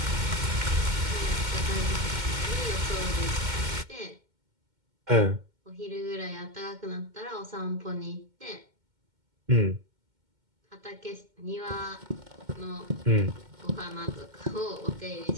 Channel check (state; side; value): late; left; 2.1 ms